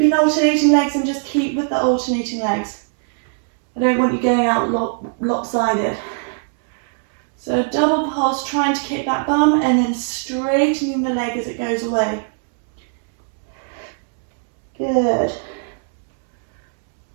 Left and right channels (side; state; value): left; silent; 64 dB below the other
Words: alternating legs, then just keep with the alternating legs. I don't want you going out lopsided. So double pulse, trying to kick that bum, and then straightening the leg as it goes away. Good.